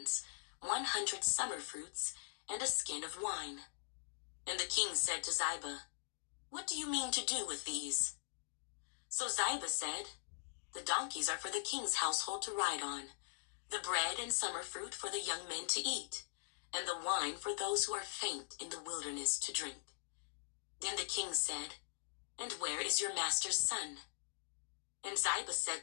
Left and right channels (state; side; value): silent; right; digital silence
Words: 100 summer fruits, and a skin of wine. And the king said to Ziba, "What do you mean to do with these?" So Ziba said, "The donkeys are for the king's household to ride on, the bread and summer fruit for the young men to eat, and the wine for those who are faint in the wilderness to drink." Then the king said, "And where is your master's son?" And Ziba